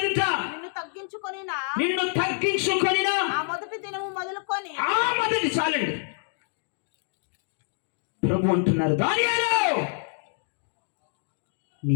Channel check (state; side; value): silent; right; 58 dB below the other